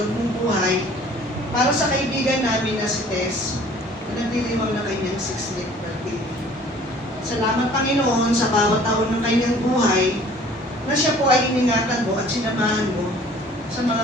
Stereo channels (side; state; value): both; normal; correlation 0.52